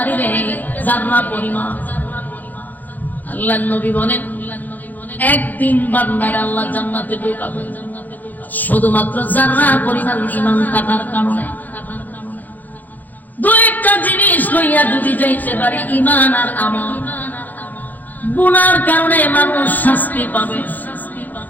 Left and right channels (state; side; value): late; right; 0.083 ms